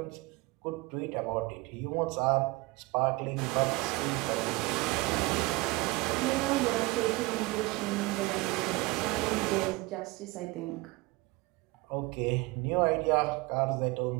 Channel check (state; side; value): quieter; left; 22.6 dB